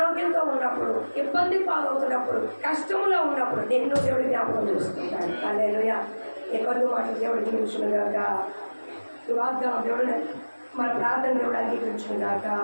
ఉన్నప్పుడు, ఇబ్బంది పాలవుతున్నప్పుడు, కష్టంలో ఉన్నప్పుడు నిన్ను దేవుడు జ్ఞాపకం చేసుకుంటాడు. హల్లెలూయా. ఈ కొద్ది మాటలు దేవుడు దీవించును గాక. ఈ వాగ్దానం దేవుడు మన ప్రార్థన దేవుడు అంగీకరించును గాక.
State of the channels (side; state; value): both; inverted; correlation -1.00